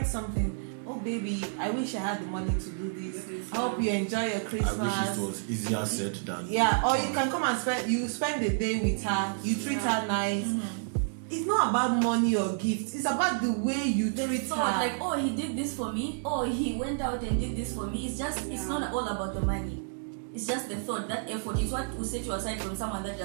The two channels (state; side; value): silent; left; 58 dB below the other